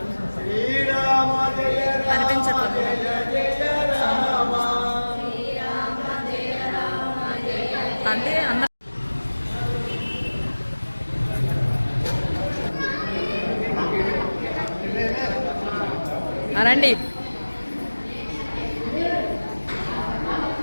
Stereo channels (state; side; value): inverted; both; correlation -1.00